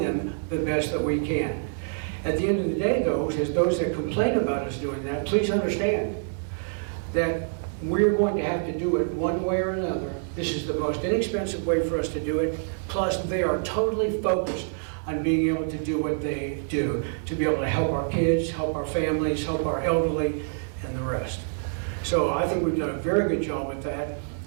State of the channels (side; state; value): left; silent; digital silence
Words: them the best that we can. At the end of the day, though, as those that complain about us doing that, please understand that we're going to have to do it one way or another. This is the most inexpensive way for us to do it. Plus, they are totally focused on being able to do what they do, to be able to help our kids, help our families, help our elderly, and the rest. So I think we've done a very good job with that.